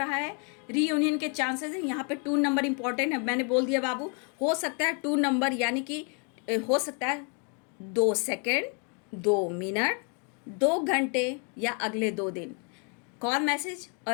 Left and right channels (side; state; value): right; quieter; 38.1 dB